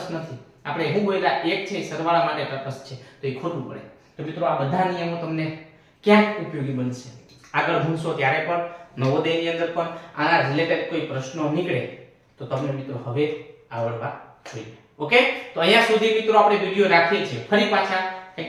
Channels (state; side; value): identical; both; correlation 1.00